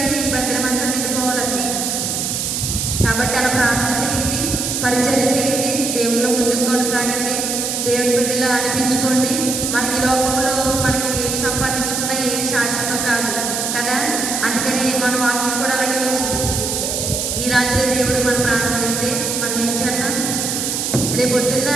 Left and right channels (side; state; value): right; noise; hiss, 1 dB below the sound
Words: ఈ మందిరం అంతా నిండిపోవాలి అసలు. కాబట్టి అలా ప్రార్థన చేయండి, పరిచర్య చేయండి, దేవుళ్ళు ముందుకు కొనసాగండి, దేవుని బిడ్డలు అనిపించుకోండి. మనకి లోకంలో మనకి ఏమి సంపాదించుకున్నా ఏమి శాశ్వతం కాదు కదా. అందుకని మన వాక్యం కూడా అలాగే వచ్చింది. ఈ రాత్రి దేవుడు మన ప్రార్థన అడిగితే మనం ఏం చేద్దాం? రేపు పొద్దున్న